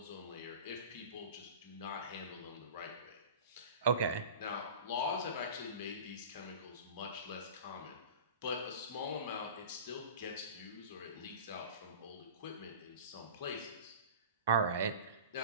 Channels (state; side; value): inverted; both; correlation -0.36